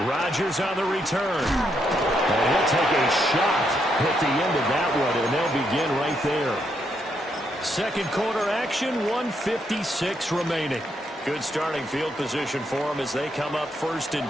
Rodgers on the return. And he'll take a shot at the end of that one, and they'll begin right there. 2nd quarter action, 1:56 remaining. Good starting field position for them as they come up 1st and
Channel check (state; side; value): normal; both; correlation 0.77